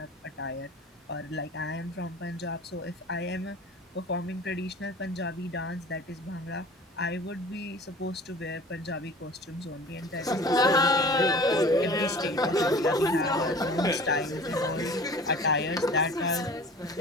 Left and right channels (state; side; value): normal; both; correlation 0.43